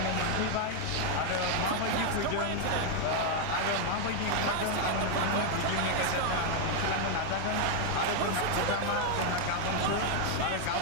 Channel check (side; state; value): both; different; correlation 0.01